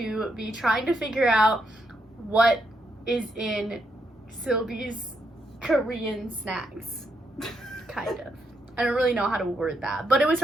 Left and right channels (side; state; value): both; normal; correlation 0.79